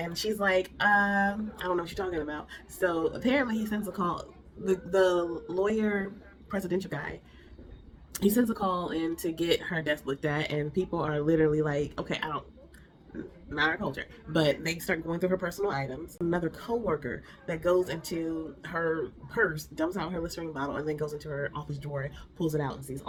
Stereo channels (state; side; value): identical; both; correlation 1.00